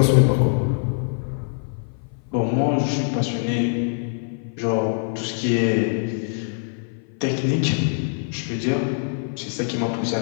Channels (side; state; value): right; silent; 56 dB below the other